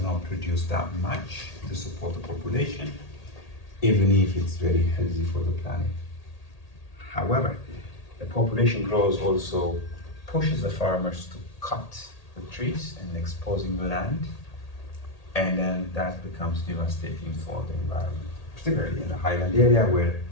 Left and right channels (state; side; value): late; right; 1.8 ms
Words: not produce that much to support the population, even if it's very healthy for the planet. However, the population growth also pushes the farmers to cut the trees and exposing the land, and then that becomes devastating for the environment, particularly in the highland area where